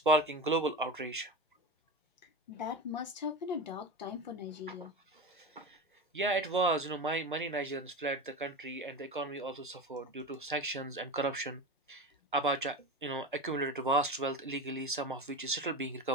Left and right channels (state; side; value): normal; both; correlation 0.24